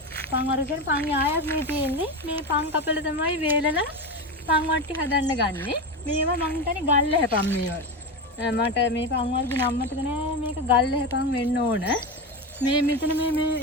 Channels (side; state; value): both; normal; correlation 0.18